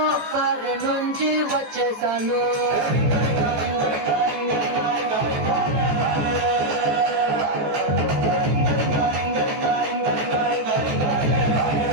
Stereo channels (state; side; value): late; left; 14 ms